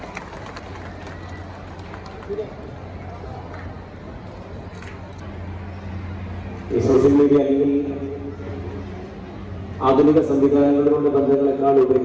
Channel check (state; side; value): identical; both; correlation 1.00